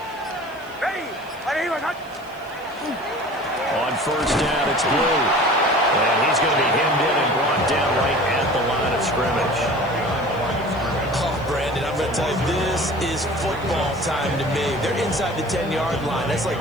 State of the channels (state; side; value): noise; left; hiss, 27 dB below the sound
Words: On 1st down, it's Blue. And he's going to be hemmed in and brought down right at the line of scrimmage. Oh, Brandon, I'm going to tell you, this is football time to me. They're inside the 10-yard line. That's like